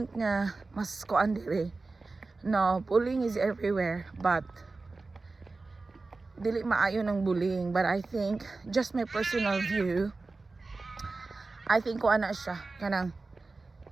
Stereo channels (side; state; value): left; quieter; 3.7 dB